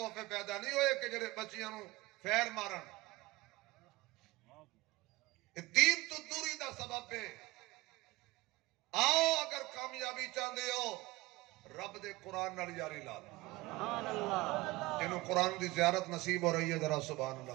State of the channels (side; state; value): left; quieter; 20.3 dB